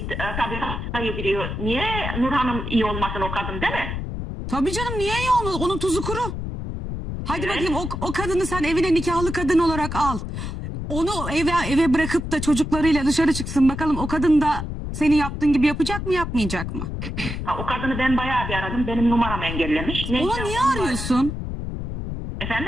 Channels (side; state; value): left; noise; rumble, 5 dB below the sound